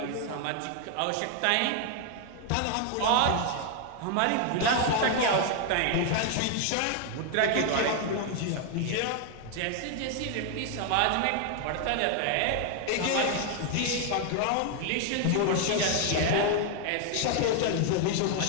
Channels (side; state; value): both; different; correlation 0.00